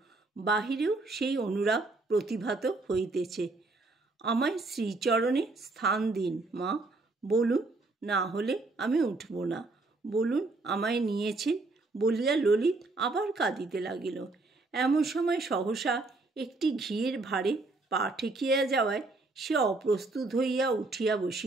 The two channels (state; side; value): quieter; left; 3.3 dB